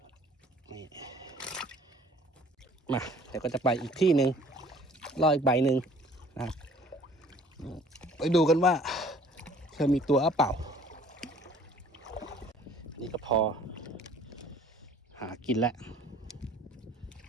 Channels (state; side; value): normal; both; correlation 0.53